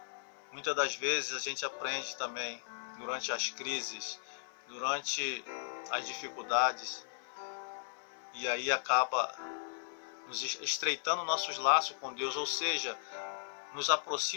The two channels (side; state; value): right; silent; 53 dB below the other